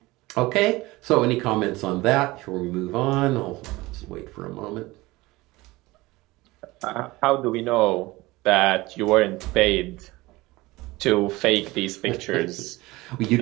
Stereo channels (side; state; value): left; quieter; 20.5 dB